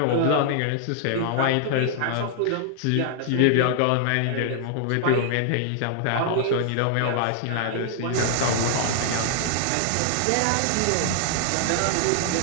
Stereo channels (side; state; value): both; different; correlation 0.00